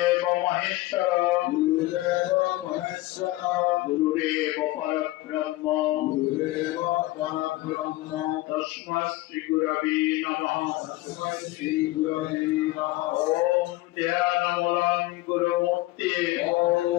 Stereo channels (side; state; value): right; quieter; 18.8 dB